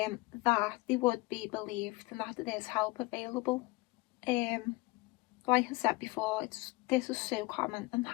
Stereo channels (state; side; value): quieter; right; 22.9 dB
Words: that they would be believed and that there's help available. Like I said before, this is so common and